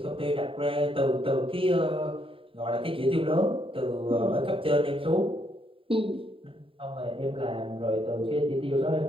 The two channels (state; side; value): late; left; 0.26 ms